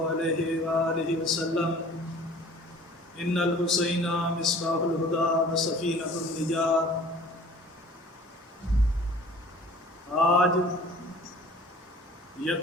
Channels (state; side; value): normal; both; correlation 0.47